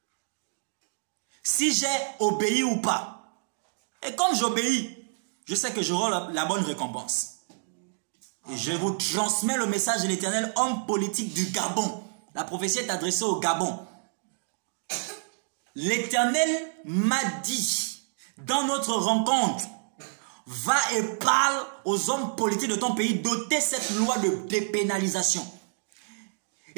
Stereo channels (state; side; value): silent; left; digital silence